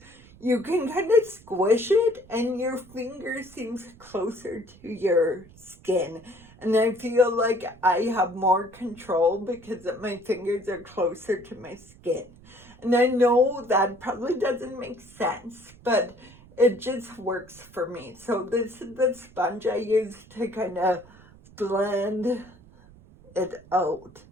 you can kind of squish it and your finger seems closer to your skin. And I feel like I have more control because my fingers are closer to my skin. And I know that probably doesn't make sense, but it just works for me. So this is the sponge I use to kind of blend it out.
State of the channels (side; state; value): right; noise; rumble, 24 dB below the sound